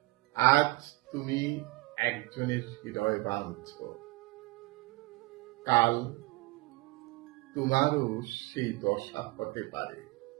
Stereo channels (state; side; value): quieter; left; 21.8 dB